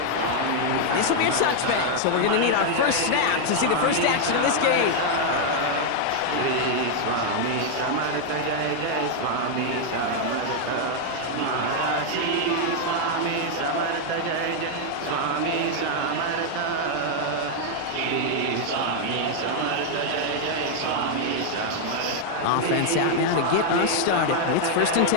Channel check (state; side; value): different; both; correlation 0.00